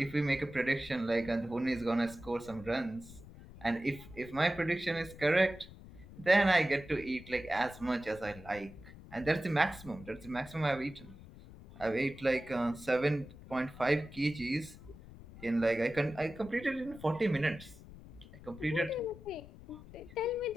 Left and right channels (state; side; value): noise; left; rumble, 17 dB below the sound